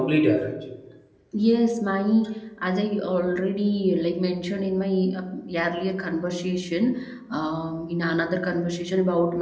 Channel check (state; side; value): identical; both; correlation 1.00